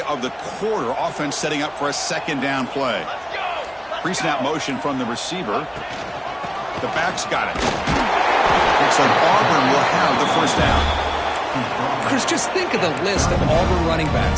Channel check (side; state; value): both; identical; correlation 1.00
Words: of the quarter. Offense setting up for a second down play. Pre-snap motion from the receiver. The back's got it. Looks like Auburn will have the first down. Chris, just think of the list of Auburn running